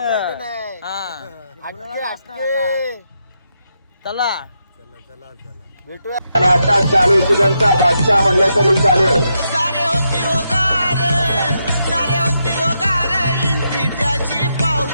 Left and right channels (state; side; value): inverted; both; correlation -0.82